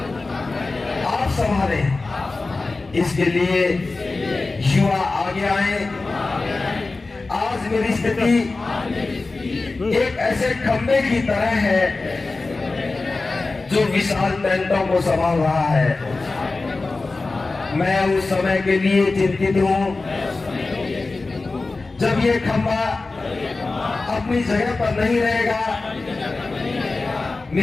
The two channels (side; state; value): right; quieter; 3.6 dB